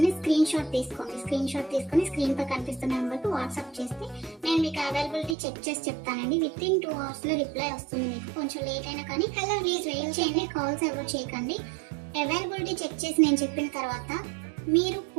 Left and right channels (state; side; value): drops out; left; at 5.4 s